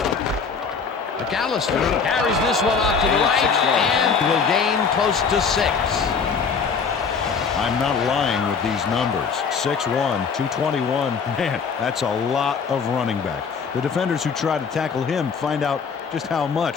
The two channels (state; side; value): quieter; right; 5.7 dB